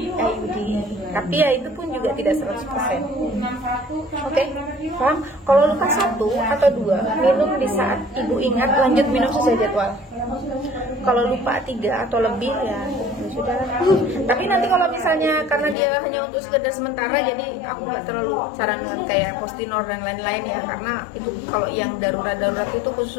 Tapi ya itu pun juga tidak 100%. Oke, paham? Kalau luka 1 atau 2, minum di saat ibu ingat, lanjut minum sesuai jadwal. Kalau lupa 3 atau lebih ya sudah. Tapi nanti kalau misalnya karena dia hanya untuk sekedar sementara, jadi aku nggak terlalu sarankan kayak Postinor dan lain-lain ya, karena itu kalau yang darurat itu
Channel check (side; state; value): right; drops out; at 15.8 s